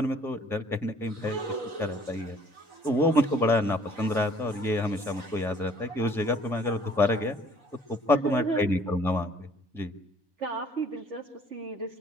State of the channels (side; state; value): both; normal; correlation 0.57